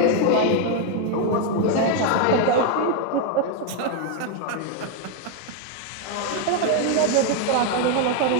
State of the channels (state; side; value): different; both; correlation 0.01